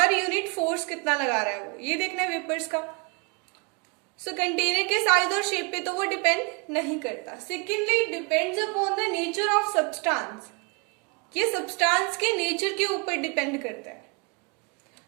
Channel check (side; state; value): left; quieter; 32.8 dB